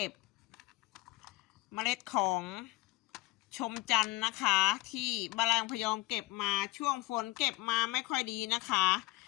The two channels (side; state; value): right; quieter; 21.3 dB